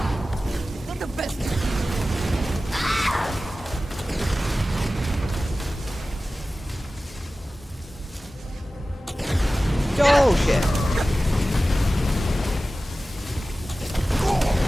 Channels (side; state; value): both; normal; correlation 0.95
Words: Not the best. Oh, shit.